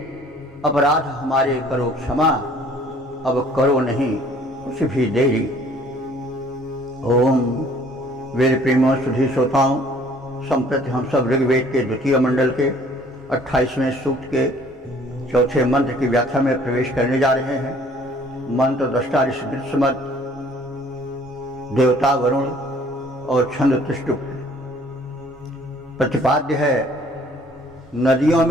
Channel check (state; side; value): normal; both; correlation 0.56